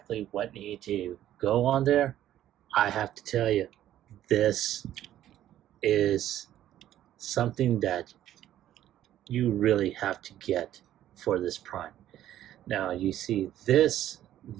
what needed to go on there, I have to tell you, this is something that you really have to get for this Prime. Now you see this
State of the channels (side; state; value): left; quieter; 12.3 dB